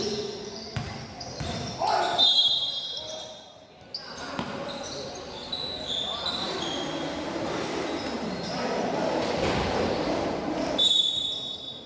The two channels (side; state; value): both; identical; correlation 1.00